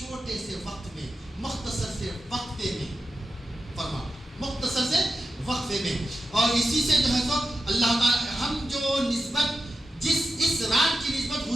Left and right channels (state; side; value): normal; both; correlation 0.91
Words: سے وقت میں، مختصر سے وقفے میں، فرما مختصر سے وقفے میں۔ اور اسی سے جو ہے تو اللہ تعالی ہم جو نسبت اس رات کی نسبت